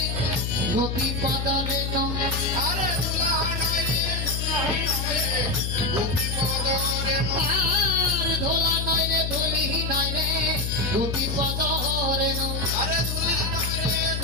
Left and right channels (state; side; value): noise; left; hum, 2 dB below the sound